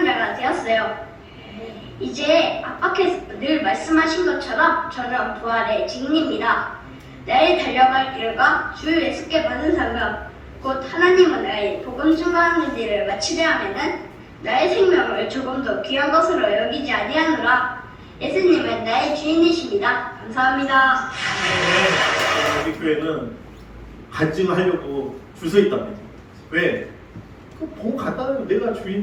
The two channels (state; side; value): identical; both; correlation 1.00